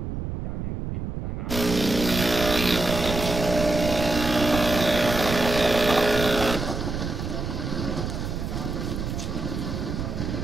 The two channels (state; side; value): noise; right; rumble, 4 dB below the sound